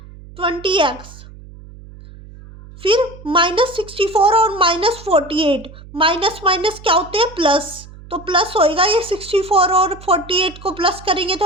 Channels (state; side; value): noise; right; hum, 18 dB below the sound